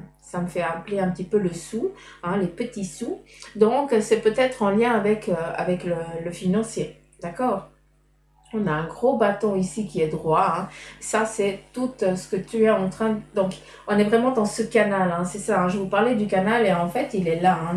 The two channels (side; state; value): both; identical; correlation 1.00